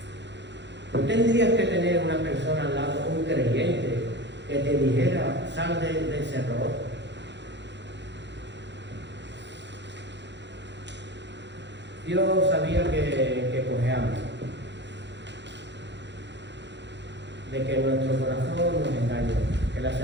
No tendrías que tener una persona al lado, un creyente, que te dijera, sal de ese error. Dios sabía que cojeamos, de que nuestro corazón nos engaña, que la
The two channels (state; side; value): late; left; 0.52 ms